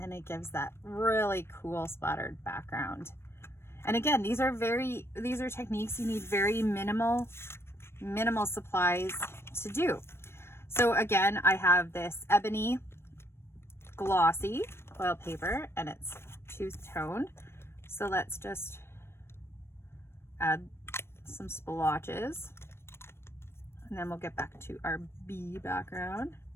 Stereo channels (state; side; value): late; right; 0.12 ms